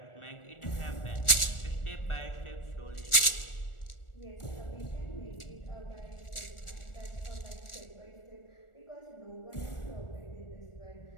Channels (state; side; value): late; right; 1.4 ms